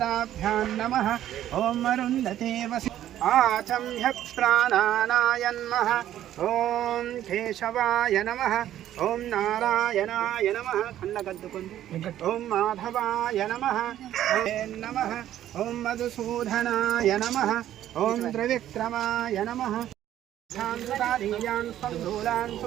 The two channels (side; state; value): left; quieter; 12.0 dB